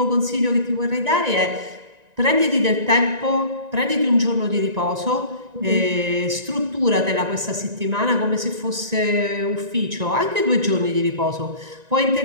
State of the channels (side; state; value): left; late; 1.9 ms